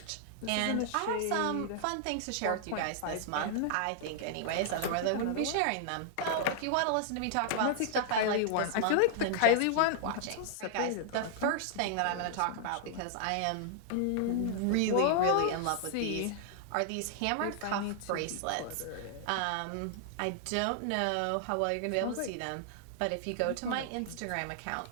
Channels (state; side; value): different; both; correlation -0.01